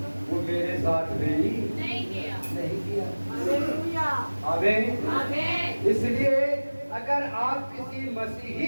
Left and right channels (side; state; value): both; inverted; correlation -1.00